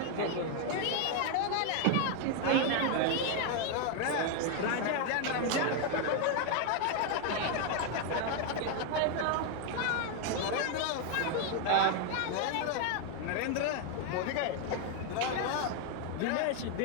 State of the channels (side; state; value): both; different; correlation 0.01